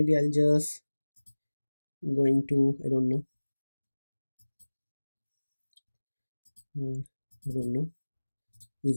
I'll just going to, I don't know, I don't know,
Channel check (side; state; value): both; inverted; correlation -1.00